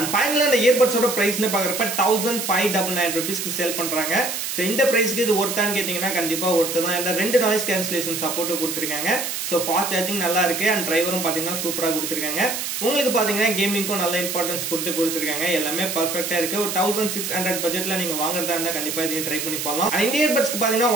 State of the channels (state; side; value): noise; right; hiss, 4 dB below the sound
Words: ஃபைனலா இந்த இயர்பட்ஸோட பிரைஸ்னு பாக்குறப்ப 1599 rupeesக்கு சேல் பண்றாங்க. சோ இந்த பிரைஸ்க்கு இது ஒர்த்தான்னு கேட்டீங்கன்னா கண்டிப்பா ஒர்த்து தான். இந்த ரெண்டு நாய்ஸ் கேன்சலேஷன் சப்போர்ட் கொடுத்திருக்காங்க. சோ ஃபாஸ்ட் சார்ஜிங் நல்லா இருக்கு. அண்ட் டிரைவரும் பாத்தீங்கன்னா சூப்பரா கொடுத்திருக்காங்க. உங்களுக்கு பாத்தீங்கன்னா கேமிங்க்கும் நல்ல இம்பார்ட்டன்ஸ் கொடுத்திருக்காங்க. எல்லாமே பெர்ஃபெக்ட்டா இருக்கு. ஒரு 1600 பட்ஜெட்ல நீங்க வாங்குறதா இருந்தா கண்டிப்பா இதையும் ட்ரை பண்ணி பண்ணலாம். இந்த இயர்பட்ஸ்க்கு பாத்தீங்கன்னா